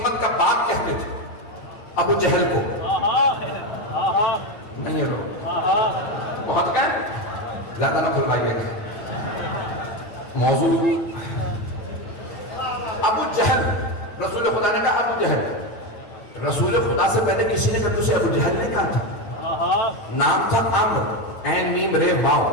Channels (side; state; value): right; late; 9.1 ms